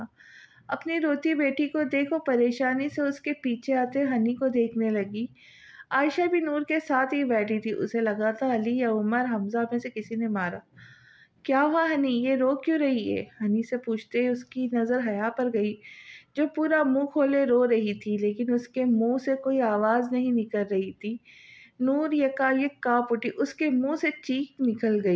اپنی روتی بیٹی کو دیکھ وہ پریشانی سے اس کے پیچھے آتے ہنی کو دیکھنے لگی۔ عائشہ بھی نور کے ساتھ ہی بیٹھی تھی۔ اسے لگا تھا علی یا عمر حمزہ میں سے کسی نے مارا۔ کیا ہوا ہنی، یہ رو کیوں رہی ہے؟ ہنی سے پوچھتے اس کی نظر حیا پر گئی، جو پورا منہ کھولے رو رہی تھی، لیکن اس کے منہ سے کوئی آواز نہیں نکل رہی تھی۔ نور یکایک کانپ اٹھی، اس کے منہ سے چیخ نکل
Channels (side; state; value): both; identical; correlation 1.00